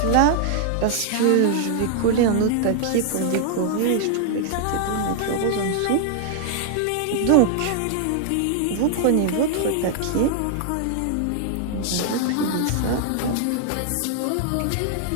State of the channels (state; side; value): different; both; correlation 0.00